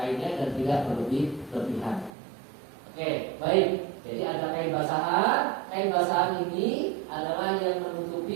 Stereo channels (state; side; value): drops out; left; at 2.1 s